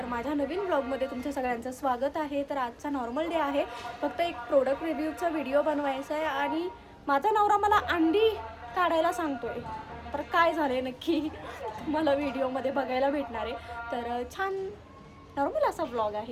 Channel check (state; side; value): identical; both; correlation 1.00